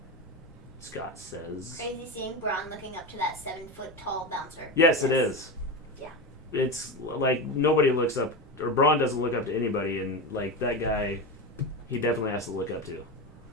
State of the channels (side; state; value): both; normal; correlation 0.20